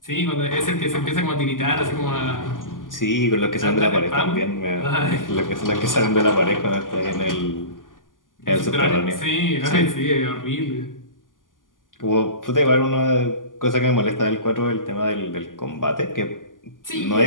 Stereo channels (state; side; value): late; right; 0.89 ms